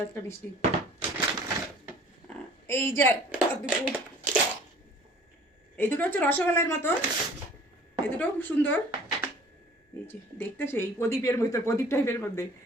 একটা মিষ্টি। এই যে এই দুটো হচ্ছে রসগোল্লার মতো, এই দুটোও খুব সুন্দর। এই যে দেখতে সেই প্রদীপের ভিতর, প্রদীপ টাইপের মধ্যে।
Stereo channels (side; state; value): both; normal; correlation 0.50